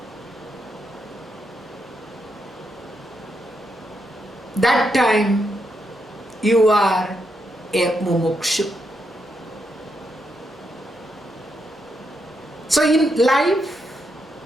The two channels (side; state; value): both; normal; correlation 0.81